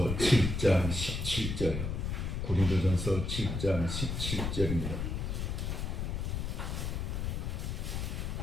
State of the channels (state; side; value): noise; left; rumble, 2 dB below the sound